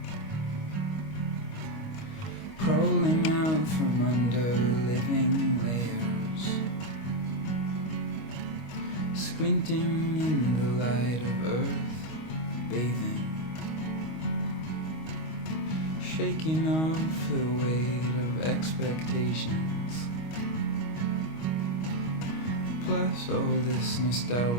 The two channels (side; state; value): right; late; 25 ms